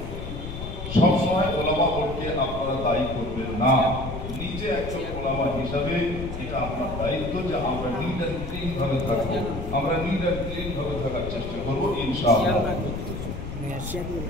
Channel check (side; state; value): left; noise; rumble, 7 dB below the sound